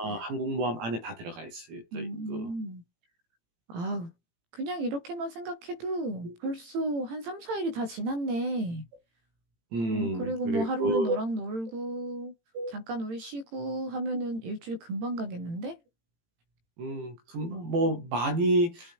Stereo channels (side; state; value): left; late; 18 ms